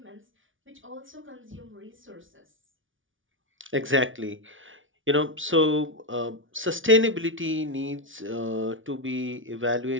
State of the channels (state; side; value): late; left; 0.57 ms